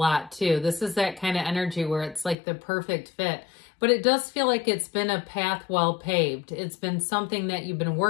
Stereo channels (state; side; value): drops out; right; at 2.4 s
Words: too. This is that kind of energy where it's like the perfect fit. But it does feel like it's been a path well paved. It's been something that you've been